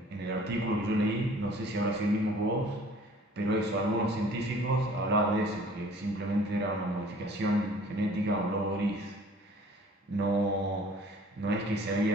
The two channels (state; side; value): normal; both; correlation 0.52